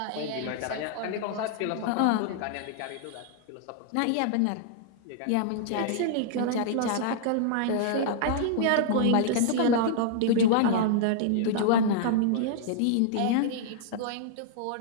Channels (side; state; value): both; different; correlation -0.01